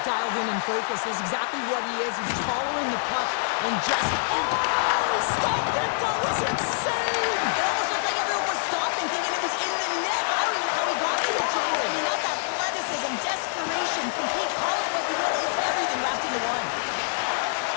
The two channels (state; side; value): silent; right; digital silence